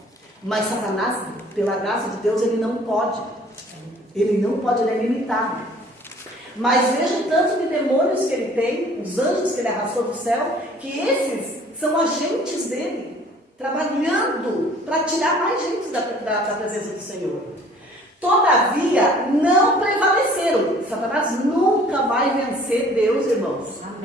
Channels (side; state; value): both; normal; correlation 0.53